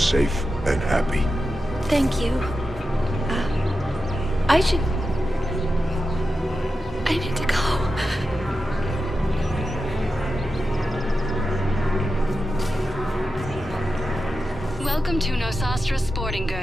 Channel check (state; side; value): normal; both; correlation 0.90